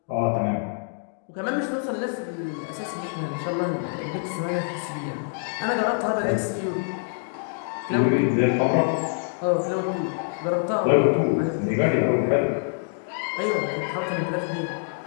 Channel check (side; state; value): right; silent; digital silence